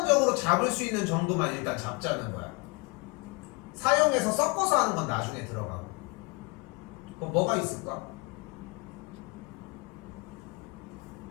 잡을 수 있는 정도만 일단 잡자는 거야. 사용해서 섞어서 하는 건 나중에 들어가고. 그럼 뭐가 있을까?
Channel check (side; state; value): right; quieter; 30.0 dB